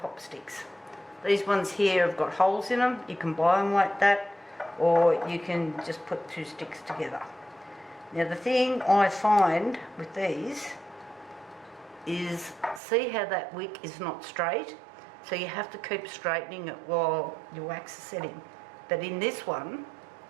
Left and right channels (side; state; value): left; drops out; at 12.8 s